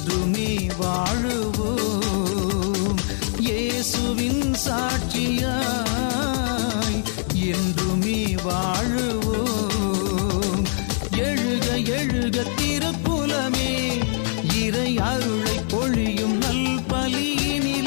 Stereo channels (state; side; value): silent; right; 63 dB below the other